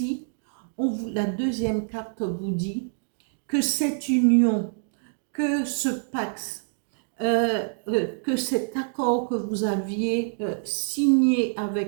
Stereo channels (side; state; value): left; silent; digital silence